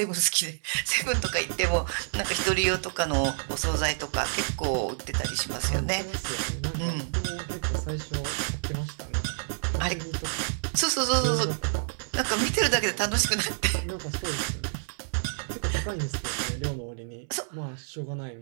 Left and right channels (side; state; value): left; silent; 59 dB below the other